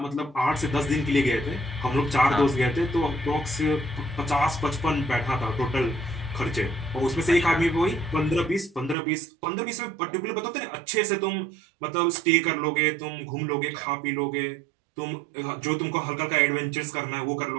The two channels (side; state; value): left; drops out; at 9.0 s